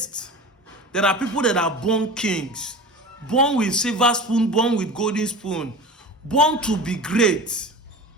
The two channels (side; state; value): both; normal; correlation 0.33